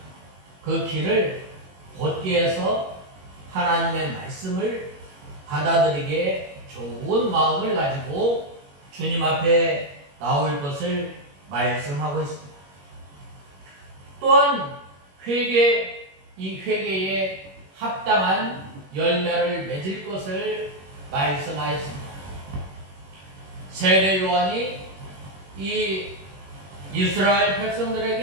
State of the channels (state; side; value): late; left; 21 ms